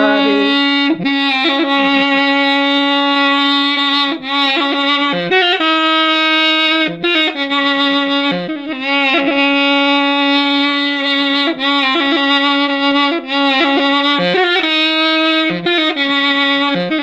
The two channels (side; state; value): both; identical; correlation 1.00